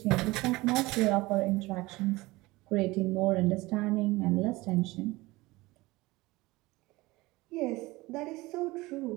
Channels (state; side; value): quieter; left; 20.9 dB